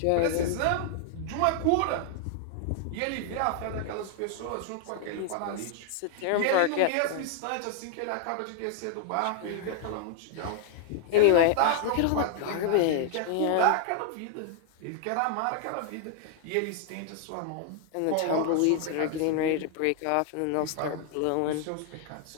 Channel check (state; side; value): different; both; correlation 0.00